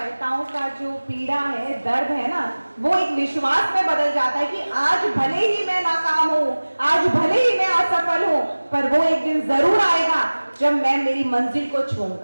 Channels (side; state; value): both; inverted; correlation -1.00